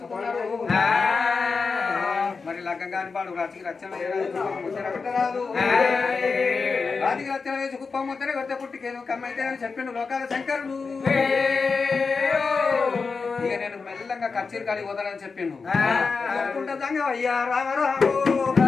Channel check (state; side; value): quieter; right; 4.7 dB